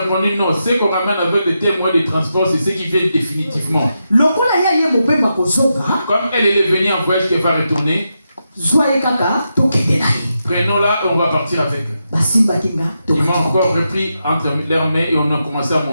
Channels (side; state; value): both; inverted; correlation -0.86